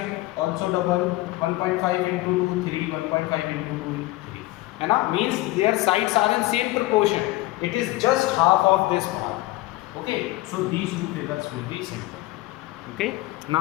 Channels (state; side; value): quieter; right; 19.0 dB